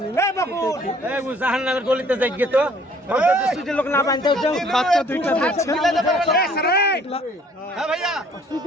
না। বাচ্চা দুইটা দেখছেন।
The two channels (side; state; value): both; normal; correlation 0.58